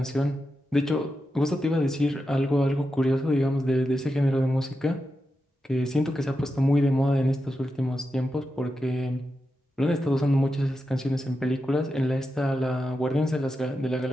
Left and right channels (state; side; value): normal; both; correlation 0.89